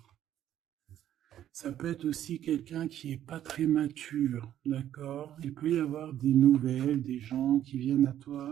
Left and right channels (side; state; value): left; quieter; 11.4 dB